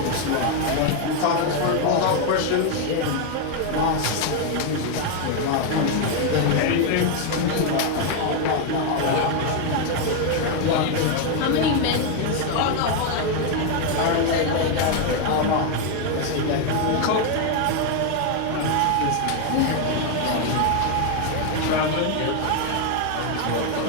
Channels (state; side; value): different; both; correlation 0.01